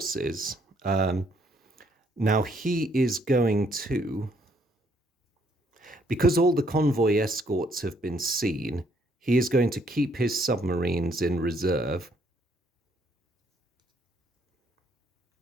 Now he is going to, because all the convoy escorts have been seen, he is going to keep his submarines in reserve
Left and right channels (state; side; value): normal; both; correlation 0.68